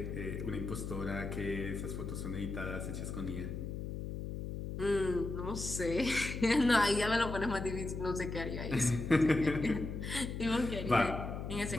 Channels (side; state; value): left; noise; hum, 5 dB below the sound